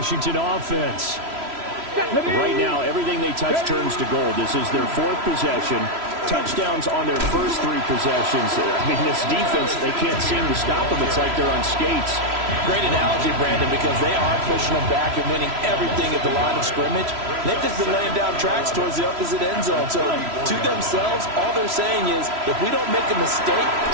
offense. Right now, everything they touch turns to gold. This is their 4th possession. Touchdowns on their first 3 possessions. I mean, this defense, they can't seem to stop them. It's like they're on skates. Great analogy, Brandon, because they are pushing them back and winning everything at the line of scrimmage. They've just been laying down tracks towards the opposite end zone. So to themselves, all they're saying is, if we don't make a mistake,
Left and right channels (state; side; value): late; left; 3.0 ms